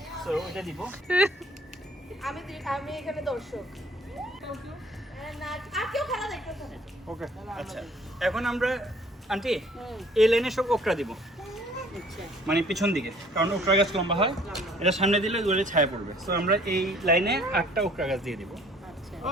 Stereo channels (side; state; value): both; normal; correlation 0.56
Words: আমি এখানে দর্শক। আচ্ছা, এখন আমরা আন্টি এই লাইনে সব ওকরা দিব, মানে পিছন দিকে, কারণ ওকরা গাছ লম্বা হয়, এটা সামনে দিলে দূরে ছায়া পড়বে। তো আমরা এই লাইনে 8টা ওকরা গাছ দিয়ে দিব।